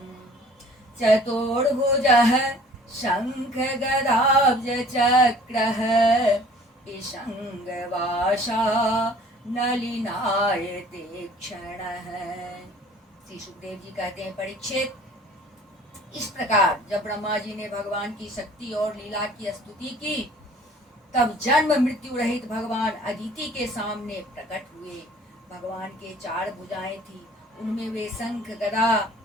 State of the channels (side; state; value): both; normal; correlation 0.51